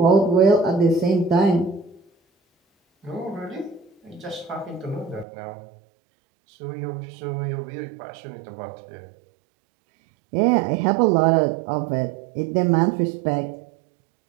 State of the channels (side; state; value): left; drops out; at 5.2 s